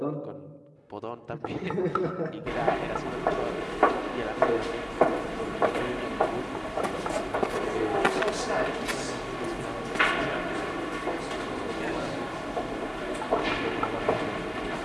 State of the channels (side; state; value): both; identical; correlation 1.00